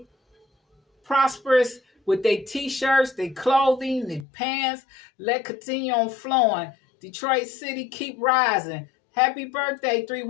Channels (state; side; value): drops out; right; at 4.2 s